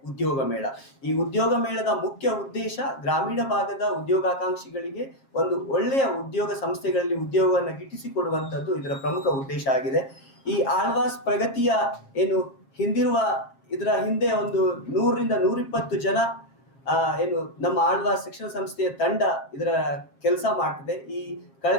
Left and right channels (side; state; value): right; late; 7.4 ms